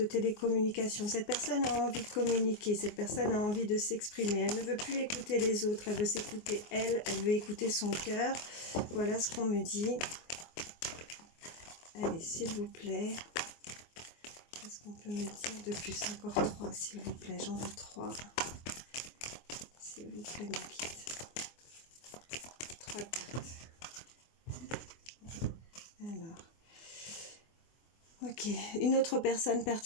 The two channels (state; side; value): late; right; 24 ms